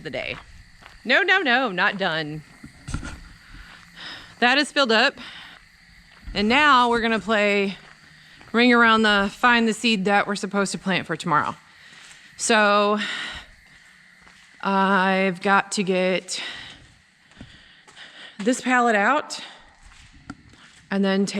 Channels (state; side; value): identical; both; correlation 1.00